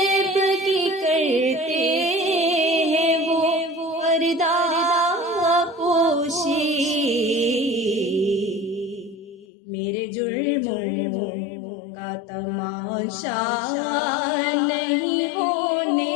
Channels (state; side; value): drops out; right; at 9.5 s